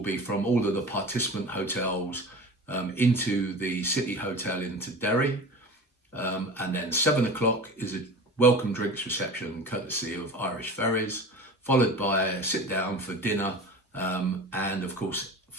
from all of the participant hotels into the City Hotel into Derry, and then 7 o'clock is a welcome drinks reception courtesy of Irish Ferries, followed by a sit down for dinner, and of course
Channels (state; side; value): normal; both; correlation 0.35